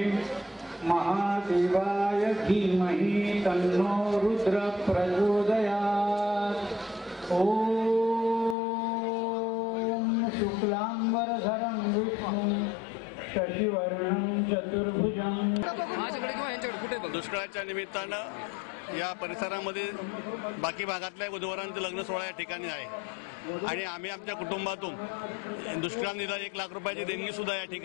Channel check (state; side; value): drops out; right; at 8.6 s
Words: महादेवाय धीमहि तन्नो रुद्र प्रचोदयात्। ओम शुक्लांबरधरं विष्णुं शशिवर्णं चतुर्भुजं। दुष्काळाच्या निमित्तानं या परिसरामध्ये बाकी भागातल्या वधूवरांचं लग्न सोहळा या ठिकाणी आहे आणि आम्ही आमच्या कुटुंबातून दुष्काळ निधी 1 लाख रुपयाची देणगी सुद्धा या